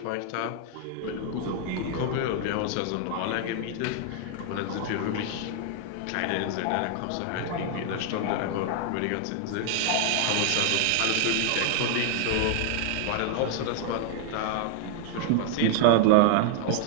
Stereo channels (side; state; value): both; different; correlation 0.00